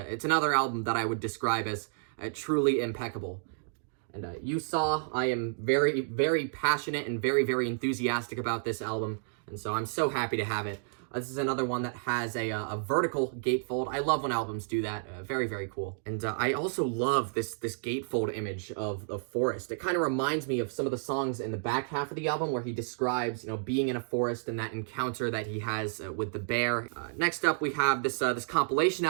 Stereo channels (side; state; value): left; silent; digital silence